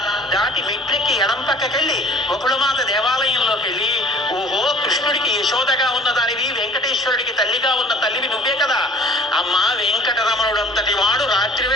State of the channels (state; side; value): normal; both; correlation 0.49